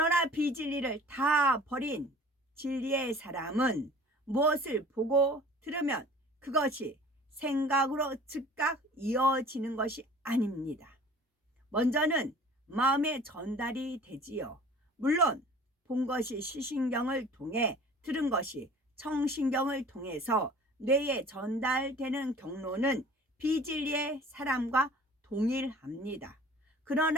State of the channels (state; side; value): normal; both; correlation 0.47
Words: 비진리를 다 버린 진리의 사람은 무엇을 보고 들으면 그것이 생각으로 즉각 이어지는 것이 아닙니다. 먼저는 마음에 전달이 되지요. 물론 본 것이 시신경을 통해, 들은 것이 청신경을 통해서 뇌에 전달되는 경로는 비진리의 사람과 동일합니다.